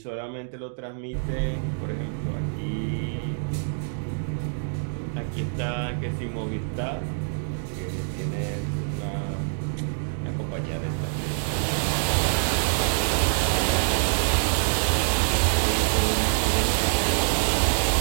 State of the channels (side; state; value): left; silent; digital silence